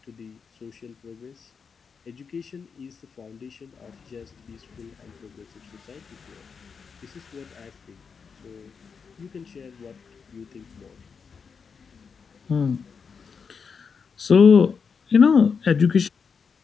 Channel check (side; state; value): right; quieter; 5.8 dB